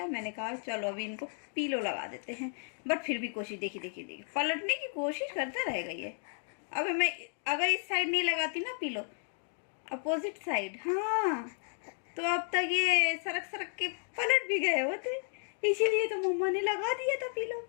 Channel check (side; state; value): right; silent; 56 dB below the other